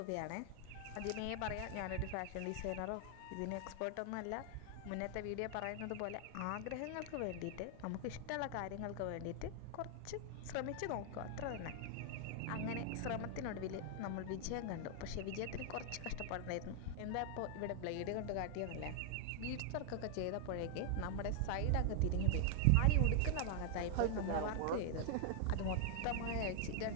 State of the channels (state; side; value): different; both; correlation 0.00